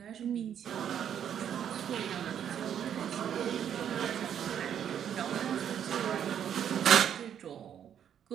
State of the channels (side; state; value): left; quieter; 9.2 dB